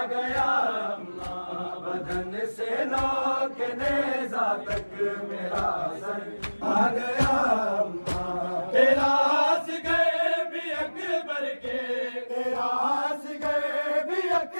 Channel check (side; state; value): both; inverted; correlation -1.00